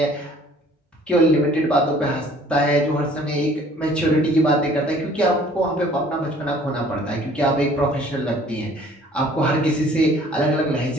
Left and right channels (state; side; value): normal; both; correlation 0.54